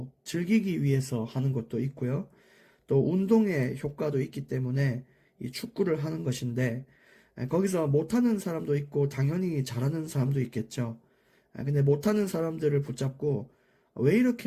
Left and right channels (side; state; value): both; identical; correlation 1.00